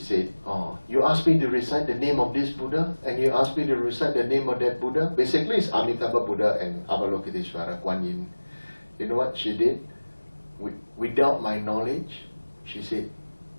"Oh, you asked me to recite the name of this Buddha, and you asked me to recite the name of that Buddha." Basically, it's Amitabha Buddha and Avalokiteshvara, Kuan Yin. You know what she did? Without my knowledge, she said,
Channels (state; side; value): inverted; both; correlation -1.00